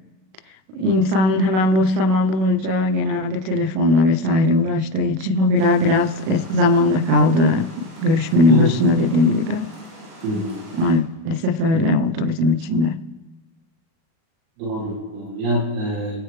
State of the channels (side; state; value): left; late; 37 ms